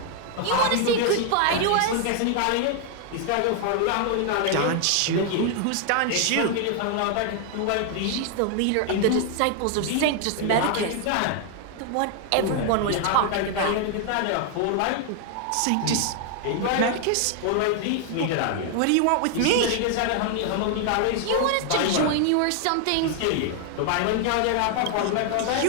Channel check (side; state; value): both; different; correlation 0.00